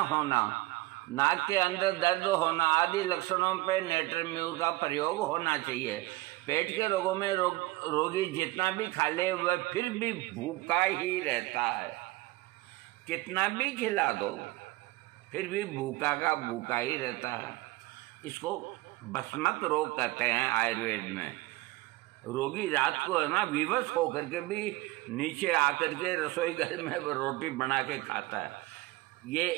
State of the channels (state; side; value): quieter; left; 20.1 dB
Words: होना, नाक के अंदर दर्द होना आदि लक्षणों पर नेट्रम म्यूर का प्रयोग होना चाहिए। पेट के रोगों में रोगी जितना भी खा ले वह फिर भी भूखा ही रहता है, कितना भी खिला दो फिर भी भूखा का भूखा ही रहता है। इसको भस्मक रोग कहते हैं आयुर्वेद में। रोगी रात को है ना विवश होकर के भी नीचे आकर के रसोई घर में रोटी बना के खाता है,